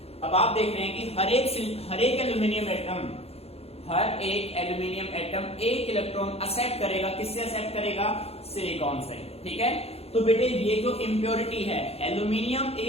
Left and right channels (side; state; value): right; late; 0.29 ms